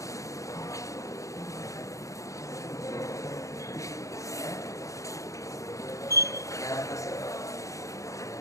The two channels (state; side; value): late; right; 0.15 ms